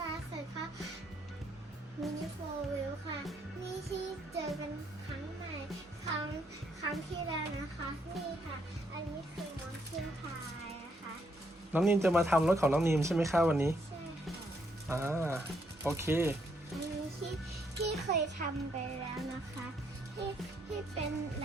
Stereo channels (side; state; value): both; normal; correlation 0.73